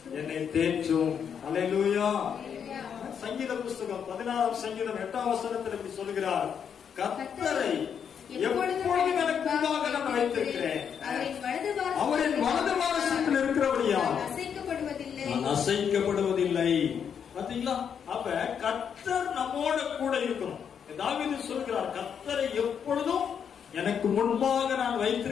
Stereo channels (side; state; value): right; quieter; 7.6 dB